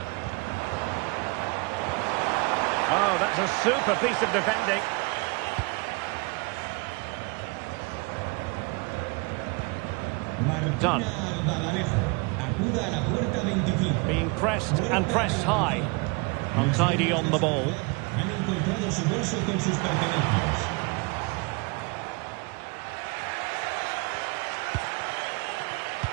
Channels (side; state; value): left; quieter; 28.9 dB